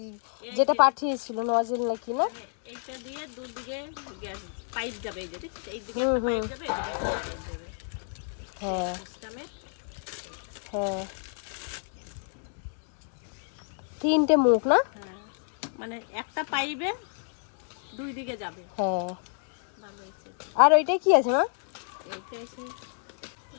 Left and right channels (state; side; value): silent; right; 58 dB below the other